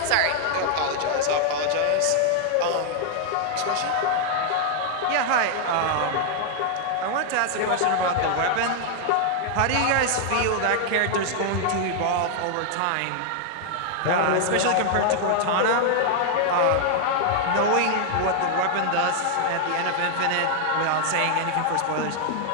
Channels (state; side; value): different; both; correlation 0.00